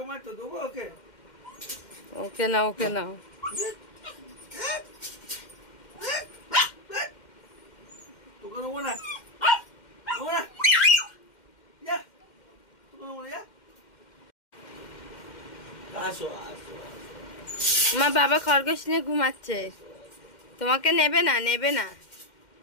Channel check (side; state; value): right; late; 2.1 ms